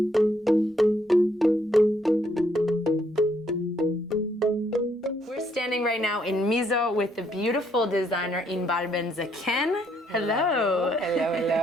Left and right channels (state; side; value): normal; both; correlation 0.71